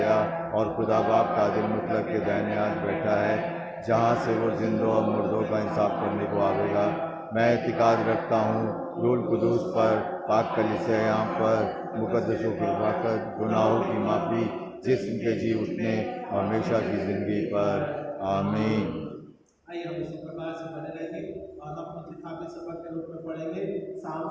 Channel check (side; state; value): both; identical; correlation 1.00